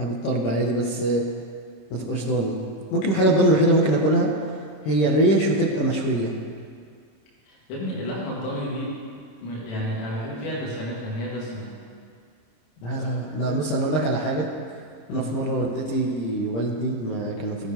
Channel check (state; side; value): late; right; 26 ms